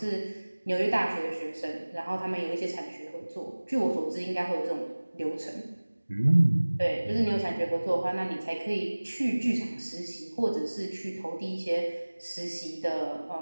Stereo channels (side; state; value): both; inverted; correlation -1.00